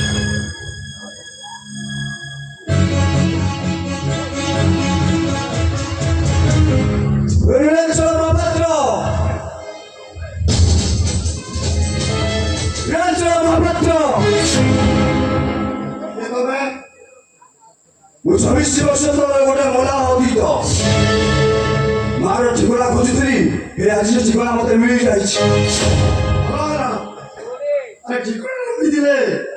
ମହାପାତ୍ର, ନୀଳାଞ୍ଚଳ ମହାପାତ୍ର, ମୁଁ 26 ବର୍ଷ ତଳେ ଗୋଟେ ମଲା ଅତୀତ ମାର ଠିକଣା ଖୋଜୁଥିଲି। ଏ ଆଜି ସେ ଠିକଣା ମତେ ମିଳିଯାଇଛି।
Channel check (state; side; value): identical; both; correlation 1.00